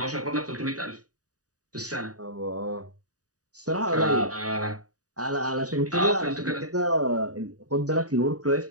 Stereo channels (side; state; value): left; late; 0.67 ms